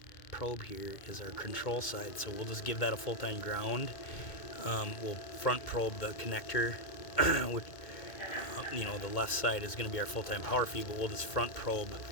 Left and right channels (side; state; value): right; late; 2.2 ms